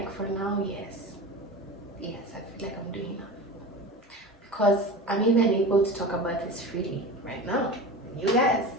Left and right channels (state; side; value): normal; both; correlation 0.31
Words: for now, yes, I feel like I'm doing enough, because I'm even able to talk about this freely right now. You guys,